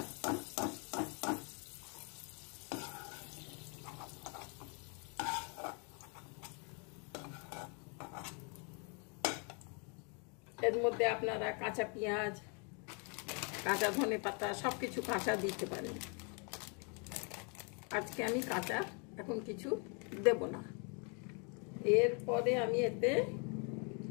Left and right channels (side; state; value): right; quieter; 36.4 dB